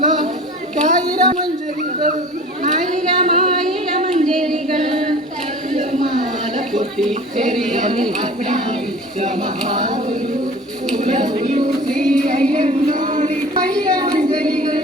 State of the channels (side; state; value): both; normal; correlation 0.42